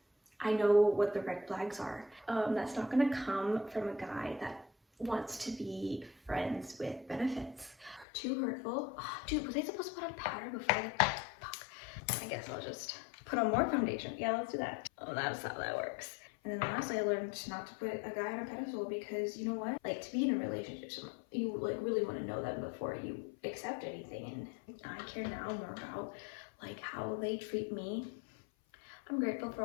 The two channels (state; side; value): drops out; right; at 8.1 s